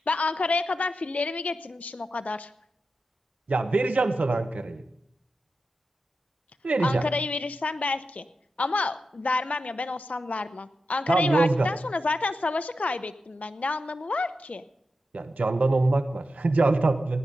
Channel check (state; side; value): normal; both; correlation 0.89